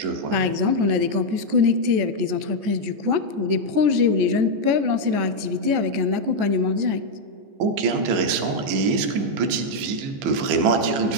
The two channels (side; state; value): left; late; 14 ms